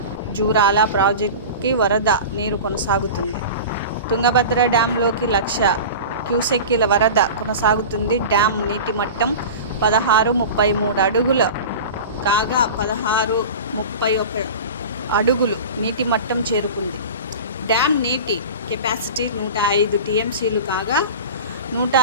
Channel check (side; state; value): both; inverted; correlation -0.32